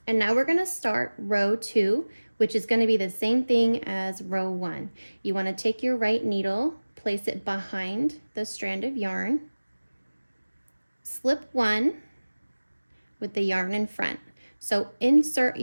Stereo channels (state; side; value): inverted; both; correlation -1.00